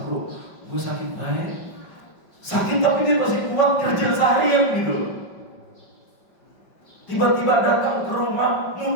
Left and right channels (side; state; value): right; late; 5.4 ms